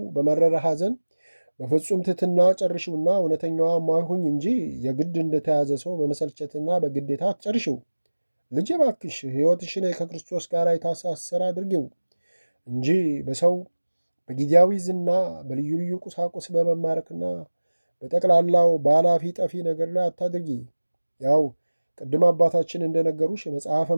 በመረረ ሐዘን በፍጹም ትሕትና ጨርሽውና እውነተኛዋ ማይሁኝ እንጂ የግድ እንደተያዘ ሰው በመሰልቸትና በግዴታ አትጨርሽው። ልጄ እባክሽ ሕይወትሽን ከክርስቶስ ጋር የታሳሰረ አድርጊው እንጂ በሰው በጊዜያዊ ዝና በልዩ ልዩ ቁሳቁስ በመማረክና በጠቅላላው በኃላፊ ጠፊ ነገር ላይ አታድርጊ። ያው ቅድም አባታችን እንደነገሩሽ መጽሐፈ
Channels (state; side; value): inverted; both; correlation -1.00